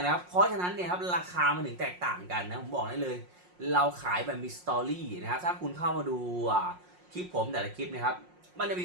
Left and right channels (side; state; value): left; late; 5.6 ms